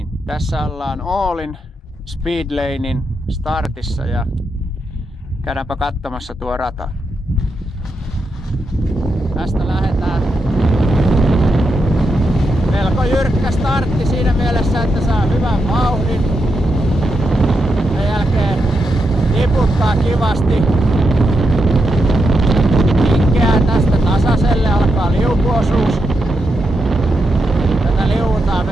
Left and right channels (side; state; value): both; normal; correlation 0.84